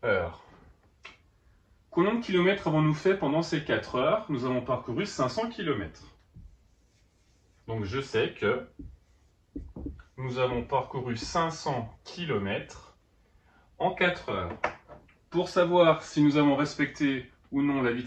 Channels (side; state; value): both; identical; correlation 1.00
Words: heures. Combien de kilomètres avons-nous fait pendant ces 4 heures? Nous avons parcouru 500 km. Donc, je sais que nous avons parcouru 500 km en 4 heures. Pour savoir si nous avons respecté ou non la